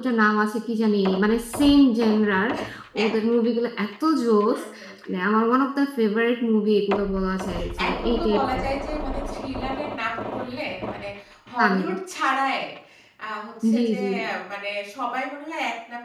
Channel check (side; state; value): both; identical; correlation 1.00